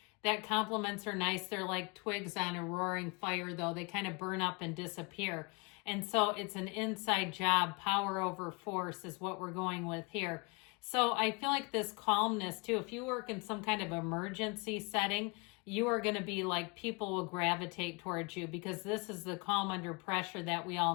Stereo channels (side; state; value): right; quieter; 29.9 dB